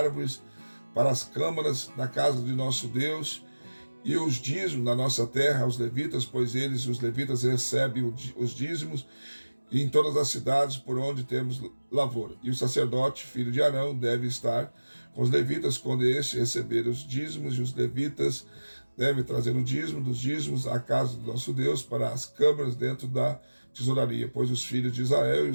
para as câmaras da casa de nosso Deus, e os dízimos da nossa terra aos levitas, pois eles, os levitas, recebem os dízimos em todas as cidades por onde temos lavoura. E o sacerdote, filho de Arão, deve estar com os levitas quando estes receberem os dízimos, e os levitas devem trazer o dízimo dos dízimos à casa do nosso Deus para as câmaras dentro da tesouraria, pois os filhos de Israel e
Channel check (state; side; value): inverted; both; correlation -1.00